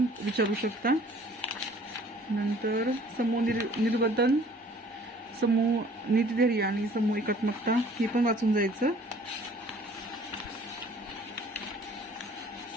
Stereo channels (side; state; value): both; normal; correlation 0.53